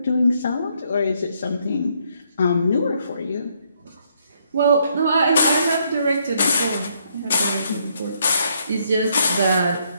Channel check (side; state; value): both; inverted; correlation -0.72